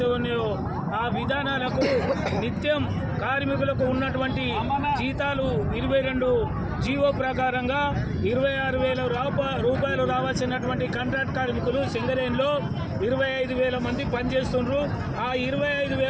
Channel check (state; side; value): identical; both; correlation 1.00